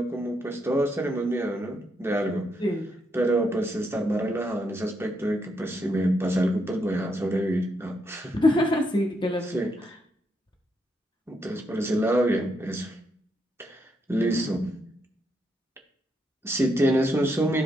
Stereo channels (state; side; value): normal; both; correlation 0.78